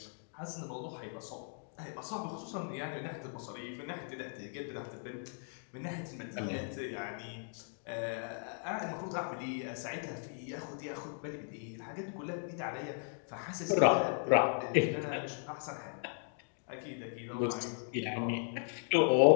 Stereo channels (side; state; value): right; silent; 53 dB below the other